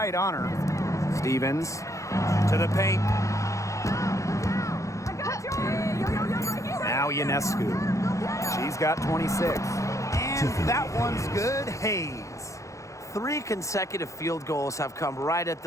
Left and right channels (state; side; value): late; right; 0.15 ms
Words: on her. Stevens to the paint. Now Ionescu. She's got 26. And that one's good. Hayes. 3 consecutive field goals have come right at